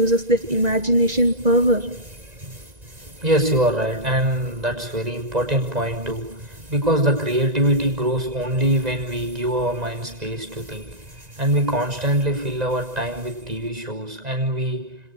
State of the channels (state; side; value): late; left; 1.9 ms